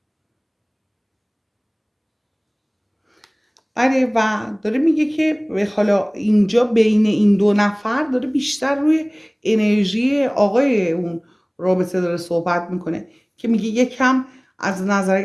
آره و داره میگه که حالا اینجا بین این دو نفر داره بیشتر روی انرژی آقای اون رابطه داره صحبت میکنه که میگه یکم از نظر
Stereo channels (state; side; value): identical; both; correlation 1.00